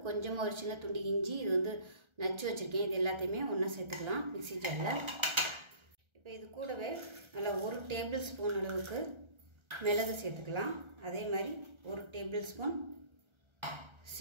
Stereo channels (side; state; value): left; late; 1.3 ms